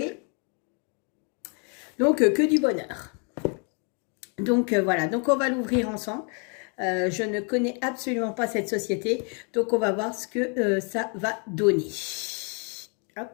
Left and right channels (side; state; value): right; quieter; 38.0 dB